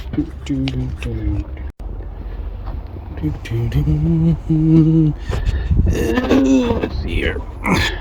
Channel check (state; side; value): identical; both; correlation 1.00